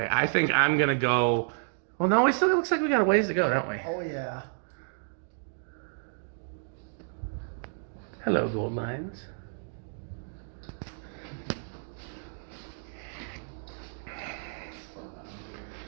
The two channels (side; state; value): left; silent; digital silence